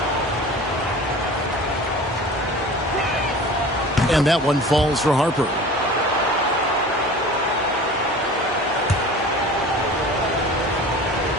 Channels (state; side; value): normal; both; correlation 0.39